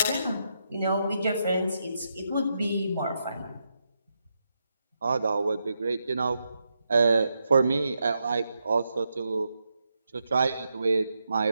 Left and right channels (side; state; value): both; inverted; correlation -0.84